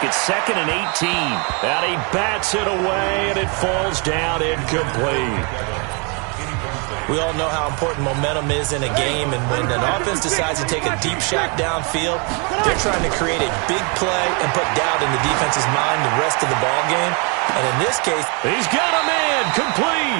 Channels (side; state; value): left; quieter; 34.0 dB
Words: It's 2nd and 18. And he bats it away, and it falls down incomplete. We all know how important momentum is in a game, and when an offense decides to take a deep shot downfield, they're trying to create a big play and put doubt in the defense's mind the rest of the ball game. And in this case, he's got a man